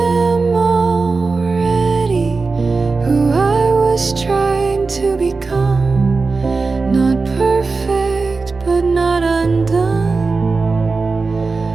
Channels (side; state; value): left; quieter; 4.1 dB